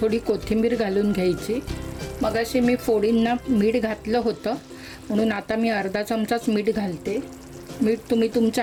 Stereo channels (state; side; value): identical; both; correlation 1.00